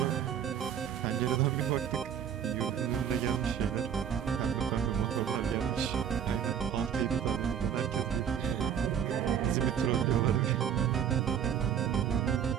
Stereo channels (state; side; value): quieter; left; 8.6 dB